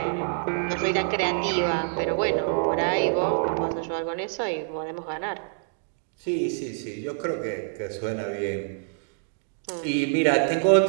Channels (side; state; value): left; silent; digital silence